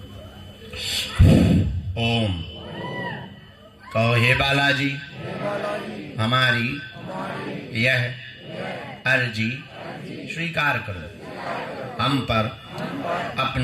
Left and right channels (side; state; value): both; identical; correlation 1.00